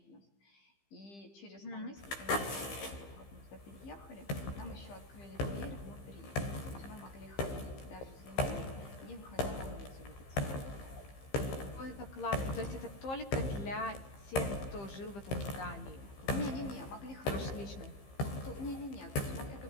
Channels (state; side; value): late; right; 15 ms